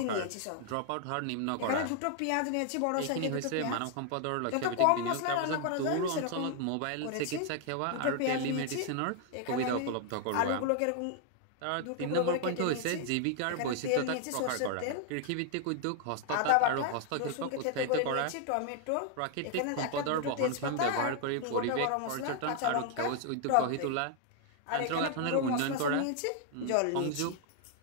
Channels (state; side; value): different; both; correlation 0.00